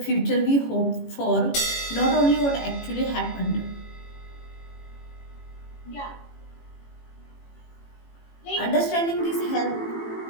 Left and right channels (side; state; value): right; late; 18 ms